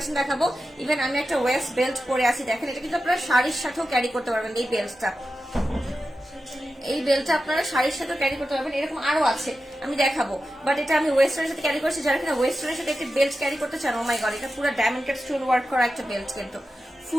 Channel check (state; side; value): normal; both; correlation 0.92